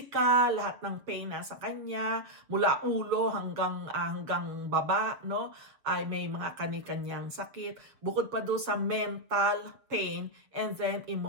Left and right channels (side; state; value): left; late; 6.9 ms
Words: lahat ng pain na sa kanya, mula ulo hanggang baba, no? Ay may mga kani-kanyang sakit. Bukod pa doon sa mental pain and then